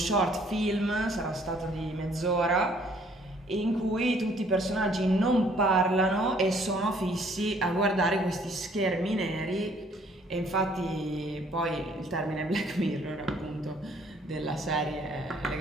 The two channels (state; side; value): normal; both; correlation 0.61